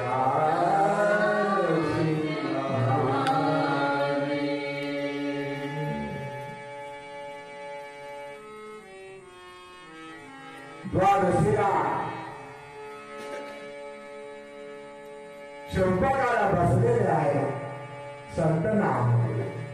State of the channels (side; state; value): both; identical; correlation 1.00